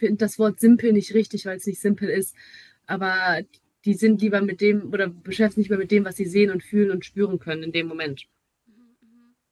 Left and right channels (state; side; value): identical; both; correlation 1.00